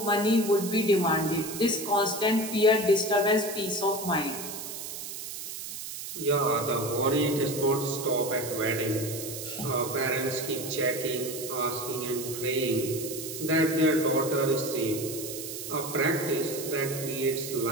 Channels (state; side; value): noise; right; hiss, 8 dB below the sound